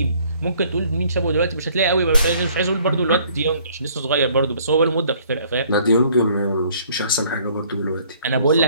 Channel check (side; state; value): both; inverted; correlation -0.59